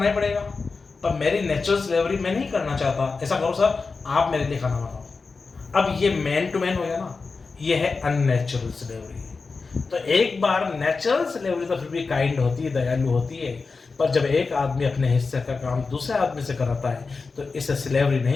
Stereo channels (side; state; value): right; quieter; 4.4 dB